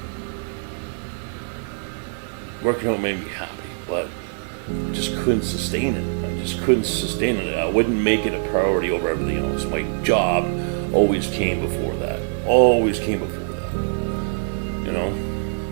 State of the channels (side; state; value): left; silent; 57 dB below the other